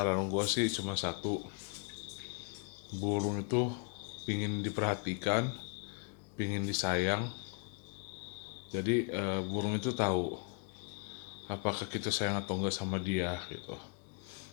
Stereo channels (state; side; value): quieter; right; 38.6 dB